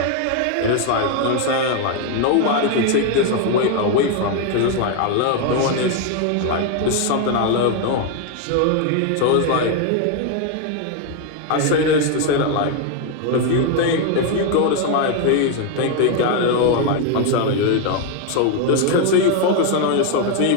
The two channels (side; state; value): both; different; correlation 0.01